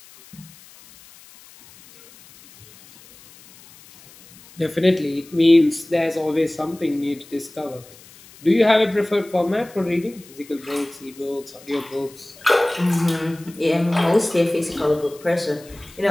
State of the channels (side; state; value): left; noise; hiss, 23 dB below the sound